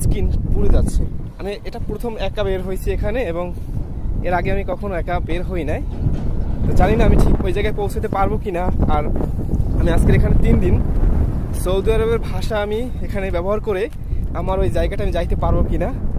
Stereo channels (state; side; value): identical; both; correlation 1.00